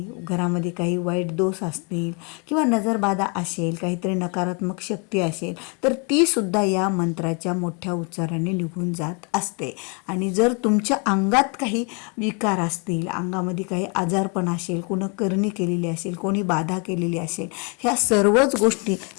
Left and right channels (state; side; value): quieter; right; 34.0 dB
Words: घरामध्ये काही वाईट दोष असतील किंवा नजरबाधा असेल, काहीतरी नकारात्मक शक्ती असेल, तर ती सुद्धा या मंत्राच्या मोठ्या उच्चाराने निघून जात असते. आणि जर तुमच्या अंगात काही विकार असतील, अंगामध्ये काही आजारपण असेल, कोणी करणी केलेली असेल, कोणी बाधा केलेली असेल, ह्या सर्वच गोष्टी